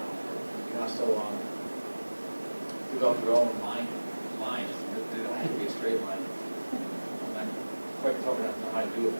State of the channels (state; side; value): inverted; both; correlation -1.00